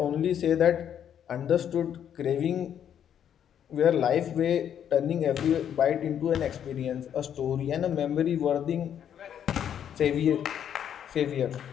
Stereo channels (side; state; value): right; quieter; 9.3 dB